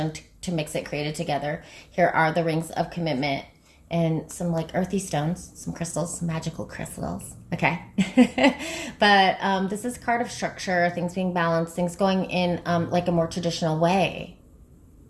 to mix it, created together. Here are the rings of commitment and some like earthy stones, some crystals, some magical crystals. Okay. But this is a card of structure, things being balanced, things going in like a more traditional way.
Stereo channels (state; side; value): identical; both; correlation 1.00